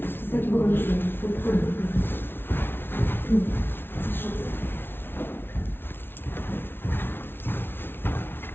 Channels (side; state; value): right; late; 0.11 ms